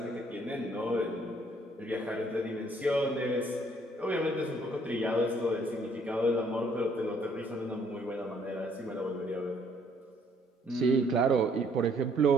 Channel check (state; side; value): normal; both; correlation 0.64